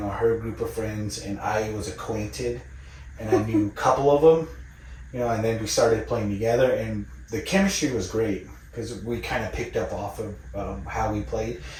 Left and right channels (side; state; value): both; identical; correlation 1.00